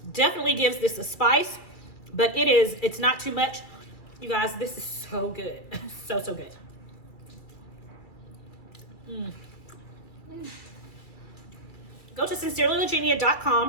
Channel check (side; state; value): right; late; 2.3 ms